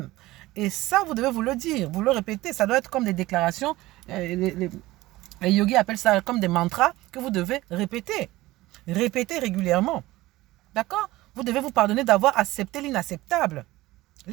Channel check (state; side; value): quieter; left; 18.2 dB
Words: Et ça, vous devez vous le dire, vous le répéter. Ça doit être comme des déclarations. Les yogis appellent ça comme des mantras que vous devez répéter. Répéter régulièrement. D'accord? Vous devez vous pardonner d'avoir accepté l'inacceptable.